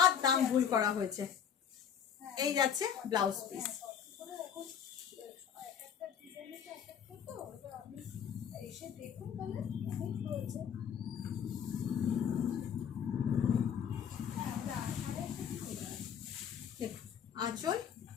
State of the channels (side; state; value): right; quieter; 8.2 dB